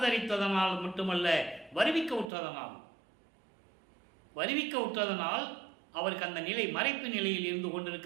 மட்டுமல்ல, வருவிக்க உற்றதனால் அவருக்கு அந்த நிலை மறைப்பு நிலையில் இருந்து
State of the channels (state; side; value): drops out; left; at 2.2 s